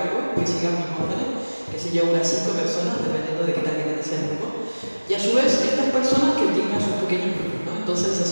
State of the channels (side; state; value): both; inverted; correlation -1.00